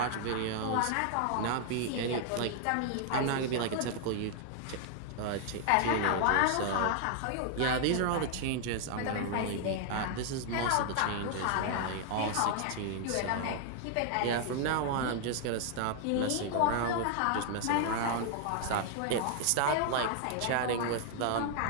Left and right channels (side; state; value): both; different; correlation 0.00